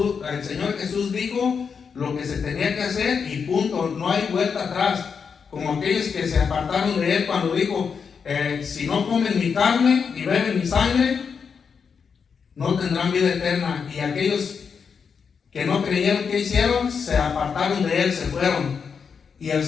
Señor Jesús dijo lo que se tenía que hacer y punto, no hay vuelta atrás. Como aquellos que se apartaron de Él cuando dijo, si no comen mi carne y beben mi sangre, no tendrán vida eterna. Y aquellos que no creyeron, que hicieron, se apartaron de Él, se fueron. Y el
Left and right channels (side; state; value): right; quieter; 6.1 dB